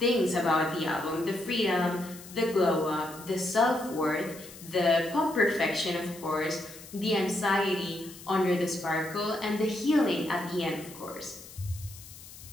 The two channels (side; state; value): left; noise; hiss, 17 dB below the sound